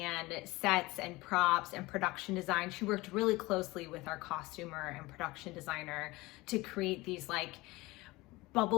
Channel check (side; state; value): right; quieter; 21.2 dB